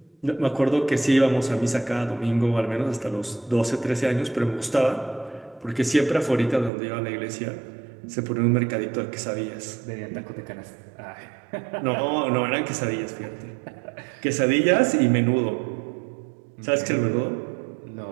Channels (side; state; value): left; drops out; at 6.7 s